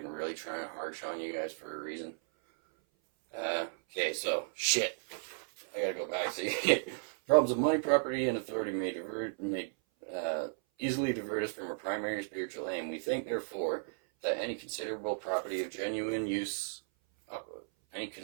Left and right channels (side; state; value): left; silent; 55 dB below the other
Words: really trying to harsh on you guys for a reason. Okay, so shit. I gotta go back. See, problems of money, property, and authority may easily divert us from our primary spiritual aim. We think, therefore, that any considerable property of genuine use